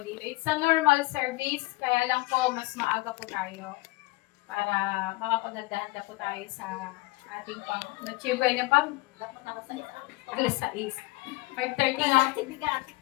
It's a normal service, kaya lang po mas maaga po tayo para makapagdadaan po tayo sa ating na-chibay na pang alas 6. 5:30 na.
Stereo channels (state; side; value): quieter; right; 23.1 dB